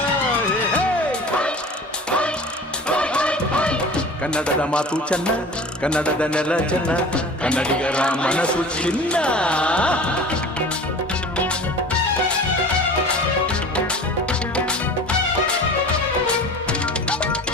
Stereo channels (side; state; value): both; normal; correlation 0.39